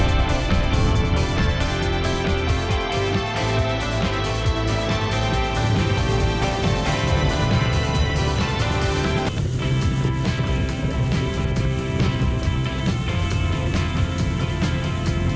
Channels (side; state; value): both; identical; correlation 1.00